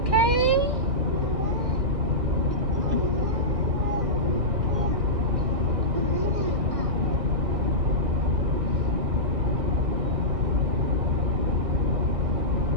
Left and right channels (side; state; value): left; late; 1.6 ms